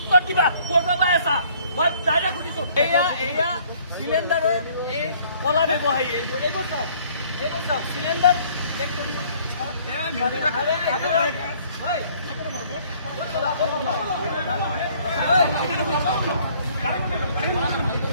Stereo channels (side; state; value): both; inverted; correlation -0.59